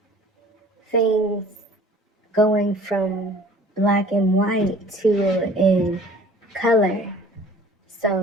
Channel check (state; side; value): normal; both; correlation 0.49